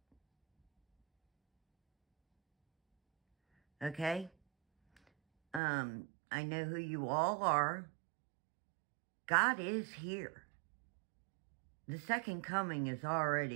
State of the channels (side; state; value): left; drops out; at 5.6 s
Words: Okay? I know who you all are. God is here. The second coming is